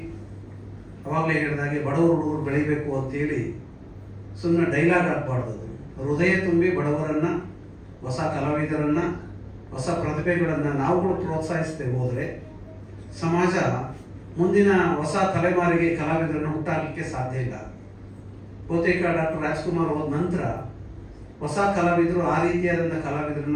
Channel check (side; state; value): both; identical; correlation 1.00